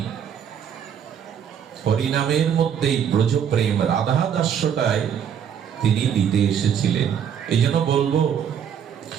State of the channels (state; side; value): quieter; left; 8.4 dB